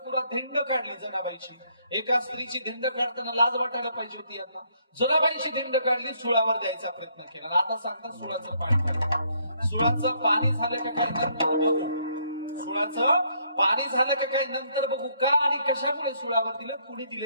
धिंड काढली. जनाबाईची एका स्त्रीची धिंड काढताना लाज वाटायला पाहिजे होती यांना. जनाबाईची धिंड काढली, सुळावर द्यायचा प्रयत्न केला. आता सांगतात सुळाचं पाणी. सुळाचं पाणी झालं का काय नंतर बघू. सुळाचं पाणी झालं का काय नंतर बघू. का आणि कशामुळे सुळावर दिलं, कुणी दिलं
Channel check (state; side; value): inverted; both; correlation -0.69